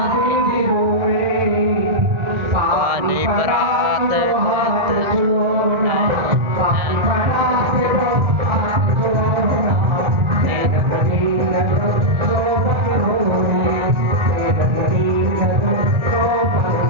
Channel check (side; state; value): left; late; 1.7 ms